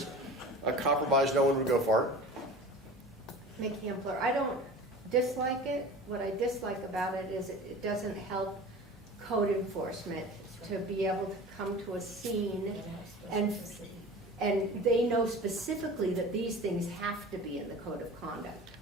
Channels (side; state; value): both; normal; correlation 0.38